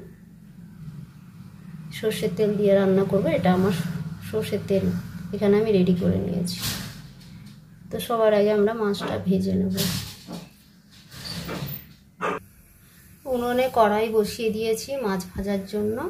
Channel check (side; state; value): both; identical; correlation 1.00